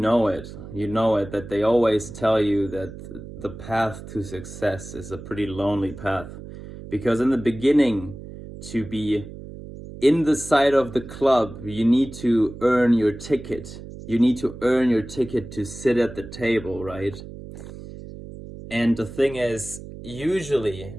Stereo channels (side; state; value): right; noise; hum, 13 dB below the sound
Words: it. You know it, that they always tell you that the path to success is a pretty lonely path. Because in the beginning, to be in the side of the club, you need to earn your ticket. You need to earn your ticket to sit at the table, right? And the thing is, usually